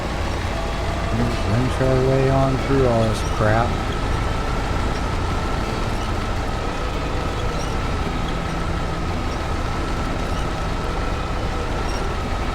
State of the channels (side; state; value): both; identical; correlation 1.00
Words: And just winch our way on through all this crap.